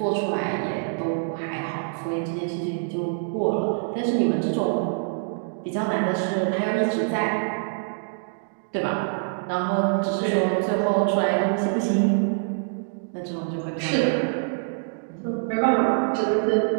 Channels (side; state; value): left; silent; digital silence